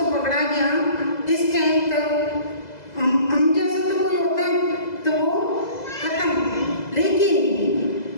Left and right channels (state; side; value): late; right; 2.0 ms